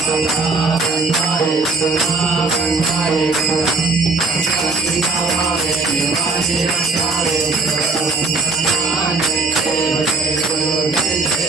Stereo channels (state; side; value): quieter; left; 3.7 dB